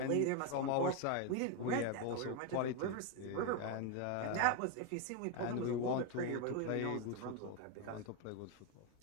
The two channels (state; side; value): different; both; correlation 0.01